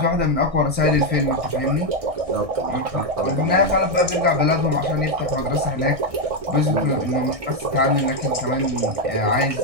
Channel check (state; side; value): late; left; 1.6 ms